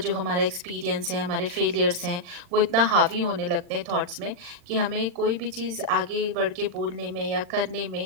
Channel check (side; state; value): left; late; 40 ms